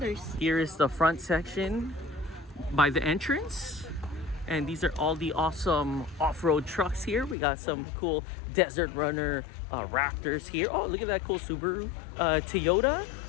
here is the front section by the entrance, and these are all the awesome off-road trucks here. We got some cool Desert Runner Raptors here. Oh, look at that cool Subaru Toyota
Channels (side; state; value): right; drops out; at 7.4 s